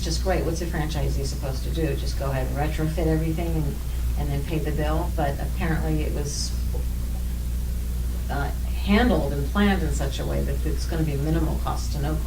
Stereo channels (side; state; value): both; identical; correlation 1.00